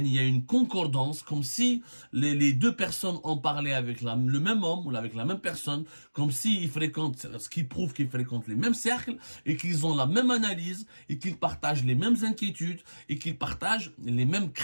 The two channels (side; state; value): both; inverted; correlation -1.00